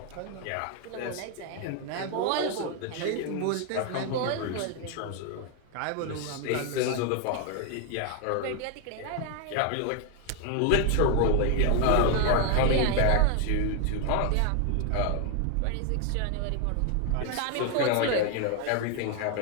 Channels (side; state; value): both; different; correlation 0.00